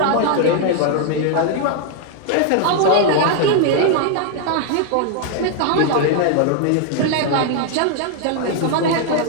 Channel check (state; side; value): different; both; correlation 0.00